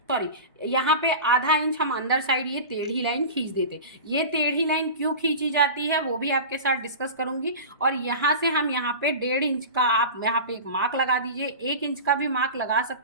सॉरी, यहाँ पे आधा इंच हम अंदर साइड ये टेढ़ी लाइन खींच देते। ये टेढ़ी लाइन क्यों खींची जाती है वो भी आपके साथ डिस्कस करूंगी। और यहाँ से हम यहाँ पे 1.5 इंच का आप यहाँ पे एक मार्क लगा दीजिए, 1 इंच का भी मार्क लगा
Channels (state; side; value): inverted; both; correlation -0.31